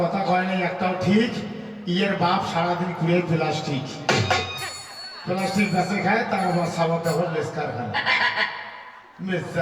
কথা কয় নাই একটাও ঠিক ইয়ের বাপ সারাদিন কুড়িয়ে প্লাস্টিক প্লাস্টিক গাছে খায় তার আবার সাবান কাপড় লেস্কার খায়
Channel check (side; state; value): both; identical; correlation 1.00